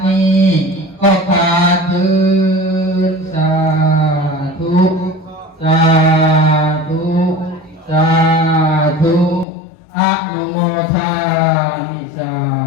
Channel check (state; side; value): drops out; right; at 9.5 s